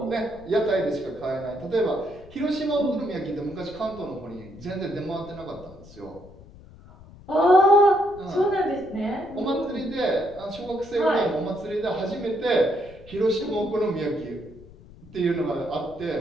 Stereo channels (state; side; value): noise; left; rumble, 21 dB below the sound